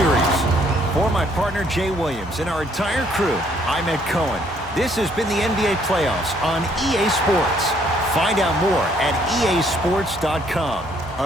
For my partner Jay Williams and our entire crew, I'm Ed Cohen. This has been the NBA playoffs on EA Sports. Find out more at easports.com.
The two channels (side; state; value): both; normal; correlation 0.66